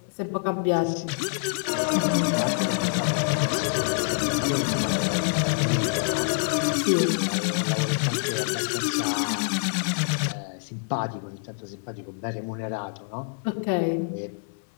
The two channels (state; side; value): silent; right; 61 dB below the other